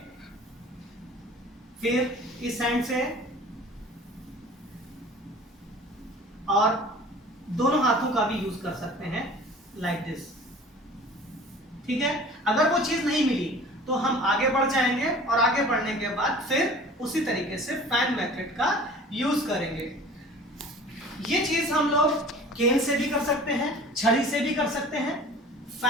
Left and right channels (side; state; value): both; normal; correlation 0.44